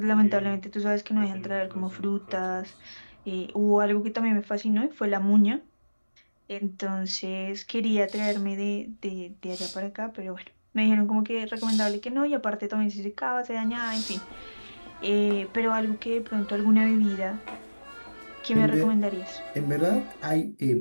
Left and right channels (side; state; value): both; inverted; correlation -1.00